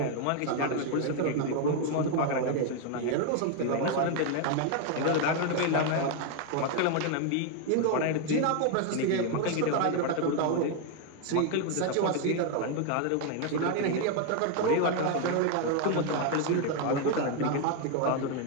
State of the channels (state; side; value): different; both; correlation 0.01